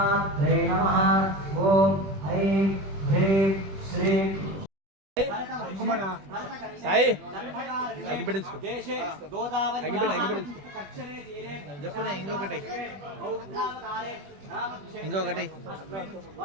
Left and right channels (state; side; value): late; left; 21 ms